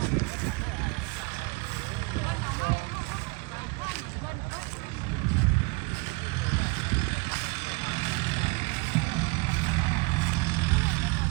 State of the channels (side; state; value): left; quieter; 27.5 dB